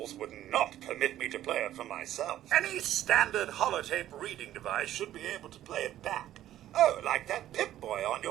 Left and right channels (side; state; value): left; quieter; 12.8 dB